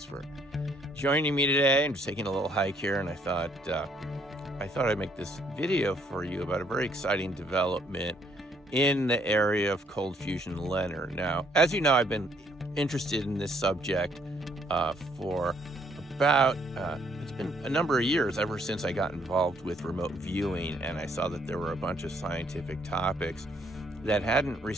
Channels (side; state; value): both; normal; correlation 0.67